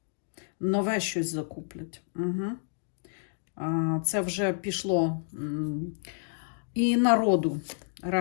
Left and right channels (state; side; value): silent; right; digital silence